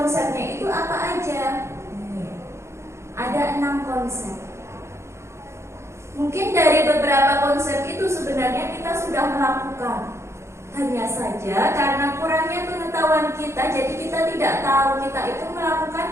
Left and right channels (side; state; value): left; late; 0.13 ms